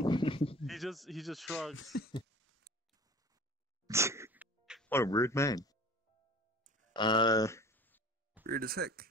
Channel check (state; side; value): normal; both; correlation 0.41